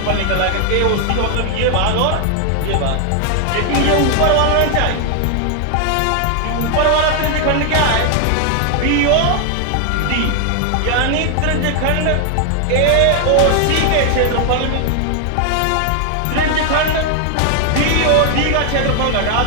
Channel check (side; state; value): both; different; correlation 0.00